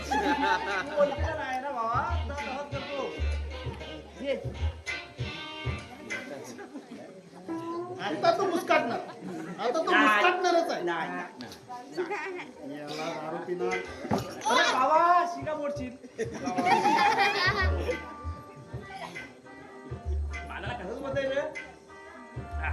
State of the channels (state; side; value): identical; both; correlation 1.00